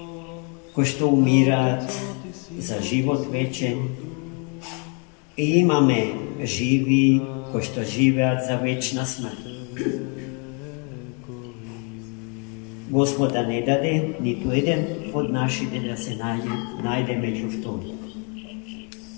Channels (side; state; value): right; quieter; 36.7 dB